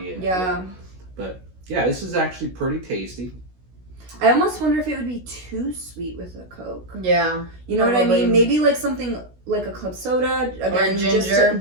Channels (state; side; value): late; left; 16 ms